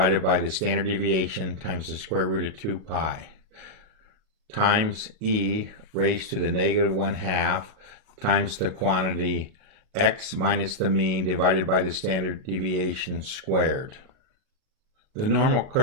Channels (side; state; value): left; late; 38 ms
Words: by the standard deviation times the square root of 2 pi times e raised to the -1/2 times the quantity x minus the mean divided by the standard deviation squared. The normal